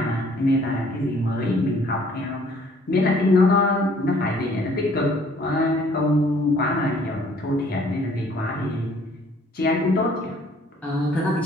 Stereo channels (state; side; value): normal; both; correlation 0.59